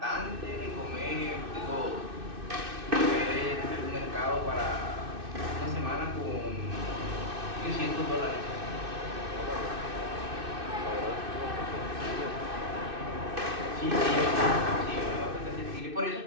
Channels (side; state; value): left; late; 2.6 ms